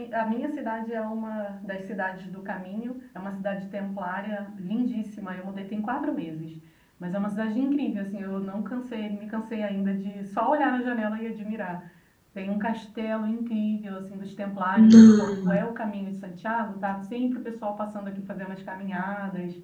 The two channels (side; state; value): both; identical; correlation 1.00